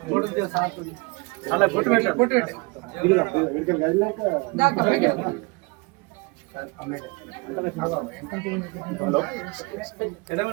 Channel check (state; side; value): quieter; left; 27.0 dB